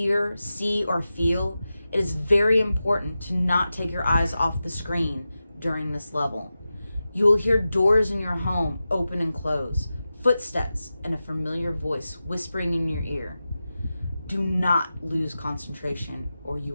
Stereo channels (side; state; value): both; inverted; correlation -0.93